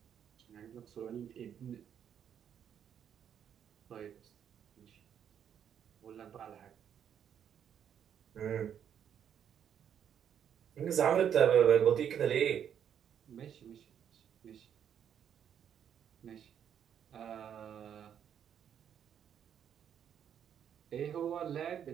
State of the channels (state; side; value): quieter; left; 8.9 dB